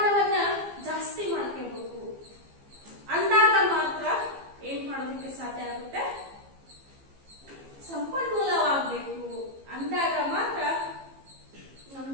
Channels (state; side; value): late; left; 15 ms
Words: ಮಾಡ್ಕೊಳ್ಳಿಕ್ಕೆ ಸಾಧ್ಯ ಆಗುತ್ತೆ? ಸಂಪನ್ಮೂಲವಾಗಬೇಕು. ಅಂದಾಗ ಮಾತ್ರ ನಮ್ಮ